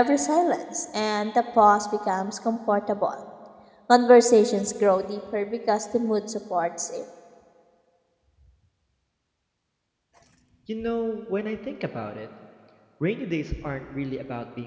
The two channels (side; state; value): both; identical; correlation 1.00